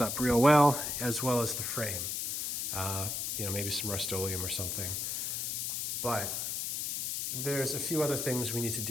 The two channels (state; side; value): noise; left; hiss, 2 dB below the sound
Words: up real well as the frame. Maybe some Rust-Oleum or something. But there's a few other things we need to